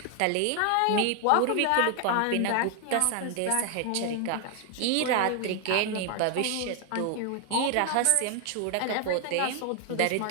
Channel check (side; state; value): both; different; correlation 0.00